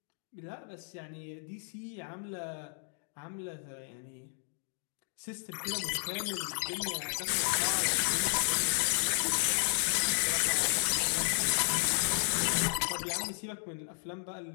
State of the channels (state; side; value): silent; right; 56 dB below the other